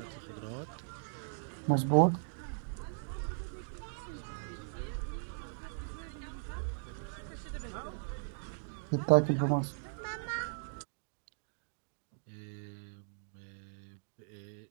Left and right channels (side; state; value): left; silent; digital silence